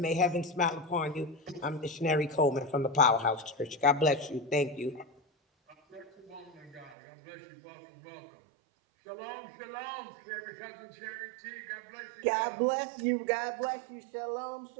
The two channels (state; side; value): drops out; left; at 7.0 s